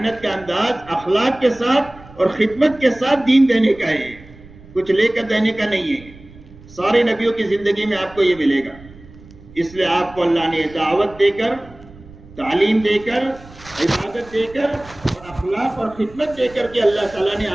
کا انداز اخلاق کے ساتھ اور خدمت کے ساتھ دین دینے کا ہے، کچھ لے کر دینے کا نہیں ہے. سارے نبیوں کی زندگی میں آپ کو یہ ملے گا. اس لیے آپ کو اللہ نے دعوت دے کر، تعلیم دے کر، عبادت دے کر اور اخلاق اور خدمت دے کر کے اللہ تعالیٰ نے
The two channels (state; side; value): noise; right; rumble, 21 dB below the sound